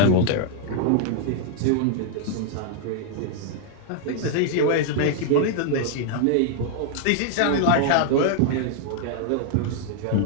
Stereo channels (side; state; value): both; different; correlation 0.00